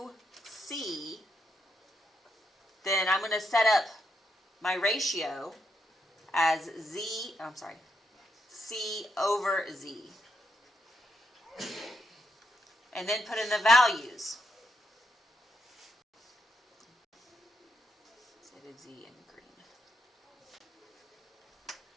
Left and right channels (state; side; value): normal; both; correlation 0.81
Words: C, then I'm going to set up my ratio as C over Z. And then put in the values. So I did Z in green.